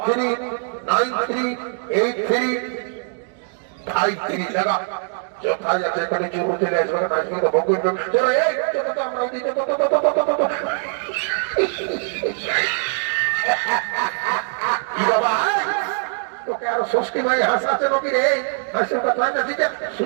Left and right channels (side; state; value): left; silent; 60 dB below the other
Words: টাকা যথা যাচ্ছে এখানে চুরু চলে আসবে না, আসবে তো ভোগ করবে। চলো এই আমরা দিতে কি বাবা তোকে আরো ষষ্ঠী ভাই হাসাচ্ছে নাকি রে? হাসির কথা দিতে